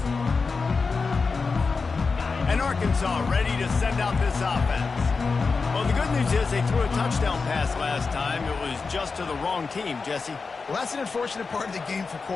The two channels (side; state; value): right; quieter; 4.6 dB